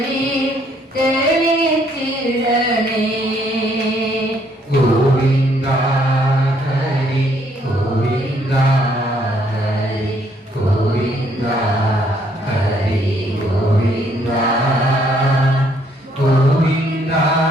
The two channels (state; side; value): normal; both; correlation 0.68